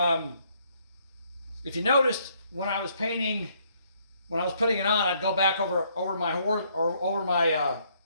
you noticed, when I was painting, when I was putting it on, I'd go back over my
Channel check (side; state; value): both; inverted; correlation -0.68